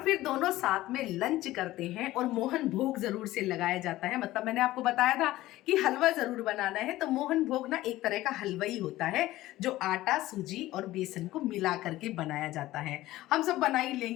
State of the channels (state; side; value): quieter; right; 16.4 dB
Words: फिर दोनों साथ में लंच करते हैं और मोहन भोग जरूर से लगाया जाता है। मतलब मैंने आपको बताया था कि हलवा जरूर बनाना है, तो मोहन भोग ना एक तरह का हलवा ही होता है जो आटा सूजी और बेसन को मिला करके बनाया जाता है। हम सब बना ही